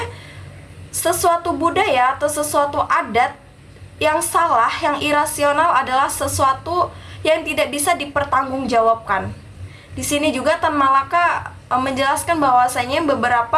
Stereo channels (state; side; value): identical; both; correlation 1.00